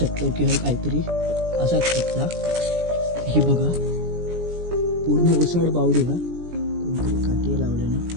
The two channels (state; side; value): late; left; 17 ms